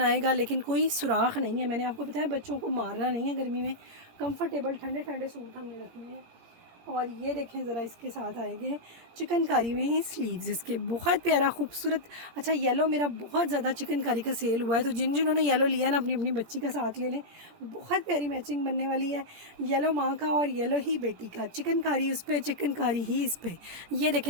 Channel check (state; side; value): late; left; 17 ms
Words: आएगा, लेकिन कोई सुराख नहीं है। मैंने आपको बताया बच्चों को मारना नहीं है गर्मी में, कंफर्टेबल ठंडे ठंडे सूट हमने रखने हैं। और ये देखें ज़रा, इसके साथ आएंगे चिकनकारी में ही स्लीव्स इसके, बहुत प्यारा खूबसूरत। अच्छा येलो मेरा बहुत ज़्यादा चिकनकारी का सेल हुआ है, तो जिन्होंने येलो लिया ना अपनी अपनी बच्ची का साथ ले लें, बहुत प्यारी मैचिंग बनने वाली है। येलो माँ का और येलो ही बेटी का, चिकनकारी उस पर, चिकनकारी ही इस पर। ये